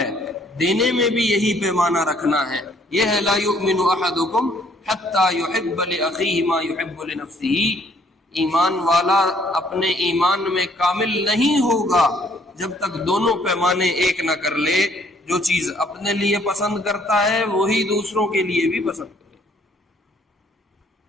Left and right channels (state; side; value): normal; both; correlation 0.63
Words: دینے میں بھی یہی پیمانہ رکھنا ہے. یہ ہے لا یؤمن احدکم حتی یحب لاخیہ ما یحب لنفسہ. ایمان والا اپنے ایمان میں کامل نہیں ہوگا جب تک دونوں پیمانے ایک نہ کر لے. جو چیز اپنے لیے پسند کرتا ہے وہی دوسروں کے لیے بھی پسند کرے.